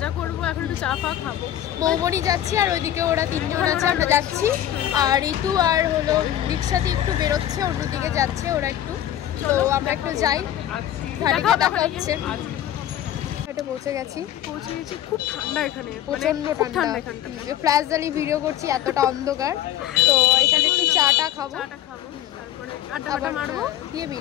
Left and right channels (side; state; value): right; quieter; 12.0 dB